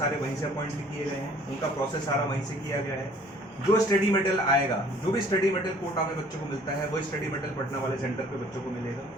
वहीं से अपॉइंट भी किए गए हैं, उनका प्रोसेस सारा वहीं से किया गया है। जो स्टडी मटेरियल आएगा, जो भी स्टडी मटेरियल कोटा में बच्चों को मिलता है, वो स्टडी मटेरियल पटना वाले सेंटर पे बच्चों को मिलेगा।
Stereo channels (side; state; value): both; normal; correlation 0.55